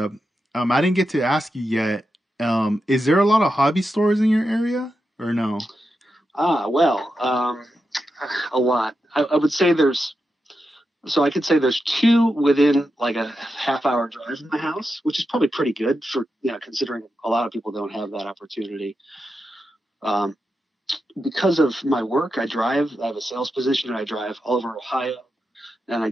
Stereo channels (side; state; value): both; normal; correlation 0.88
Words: I didn't get to ask you yet. Is there a lot of hobby stores in your area or no? Well, a lot. I would say there's. So I could say there's two within like a half-hour drive from my house, which is probably pretty good for considering a lot of people don't have that opportunity. Um, because of my work, I drive. I have a sales position, and I drive all over Ohio, and I